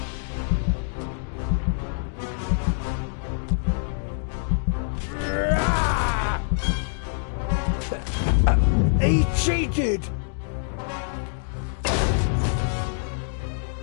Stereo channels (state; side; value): silent; right; digital silence